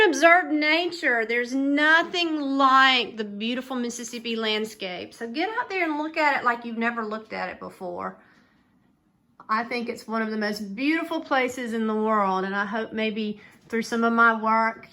observe nature. There's nothing like the beautiful Mississippi landscape. So get out there and look at it like you've never looked at it before. I think it's one of the most beautiful places in the world, and I hope maybe through some of my work,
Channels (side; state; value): both; identical; correlation 1.00